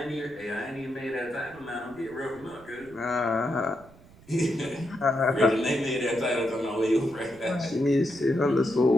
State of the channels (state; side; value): noise; right; rumble, 24 dB below the sound